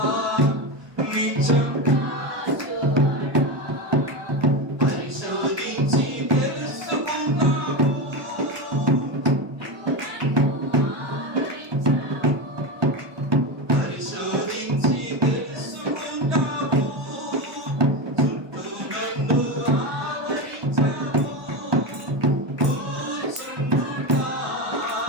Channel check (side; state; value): left; late; 1.2 ms